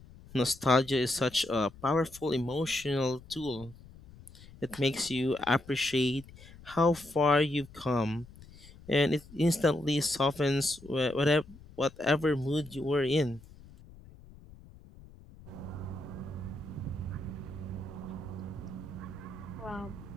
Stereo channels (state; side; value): noise; left; rumble, 20 dB below the sound